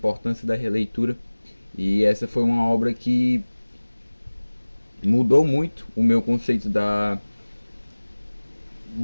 da releitura e essa foi uma obra que mudou muito o meu conceito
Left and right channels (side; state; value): both; inverted; correlation -1.00